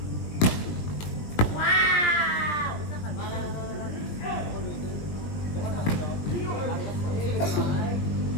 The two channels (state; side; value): late; right; 20 ms